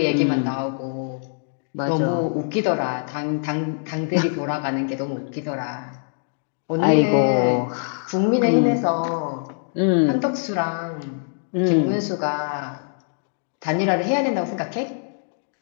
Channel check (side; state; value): right; silent; digital silence